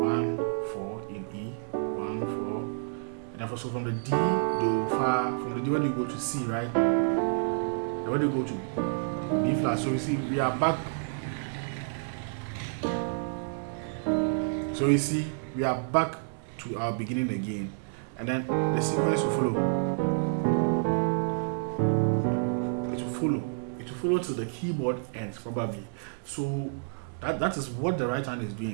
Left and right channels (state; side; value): silent; left; digital silence